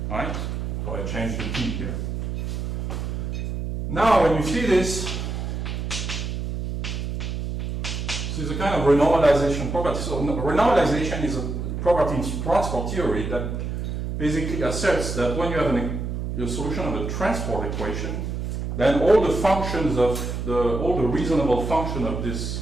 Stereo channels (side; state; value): right; noise; hum, 4 dB below the sound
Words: right? So I changed the t here. Now when you see this is a kind of renormalization property. So renormalization is a property in transport theory that basically asserts that when you have a solution of a transport equation, then all the functions of all the reasonable function of